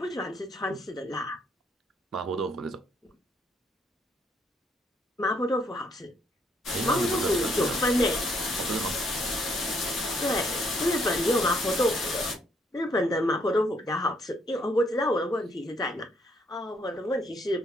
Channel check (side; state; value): both; normal; correlation 0.70